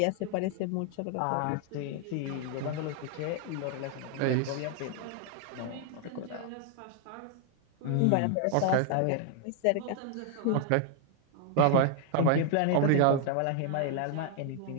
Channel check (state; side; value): different; both; correlation 0.00